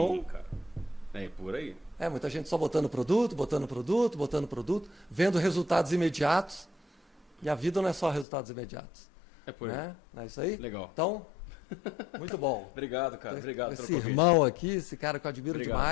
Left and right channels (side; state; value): right; drops out; at 8.2 s